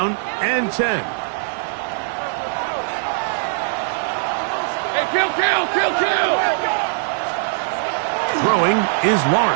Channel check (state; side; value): silent; left; digital silence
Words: and 10. Hey, kill! Throwing is